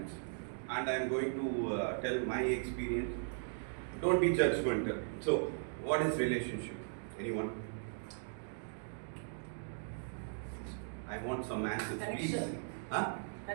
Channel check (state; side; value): silent; left; digital silence